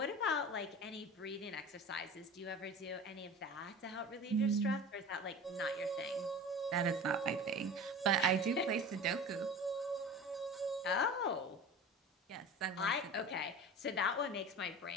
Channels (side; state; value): both; normal; correlation 0.35